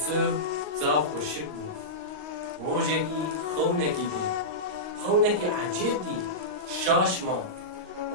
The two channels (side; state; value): left; late; 39 ms